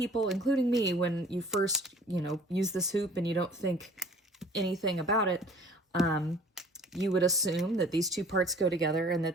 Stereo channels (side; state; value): both; normal; correlation 0.50